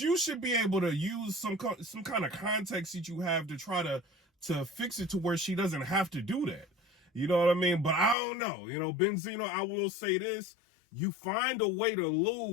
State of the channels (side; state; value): right; drops out; at 8.2 s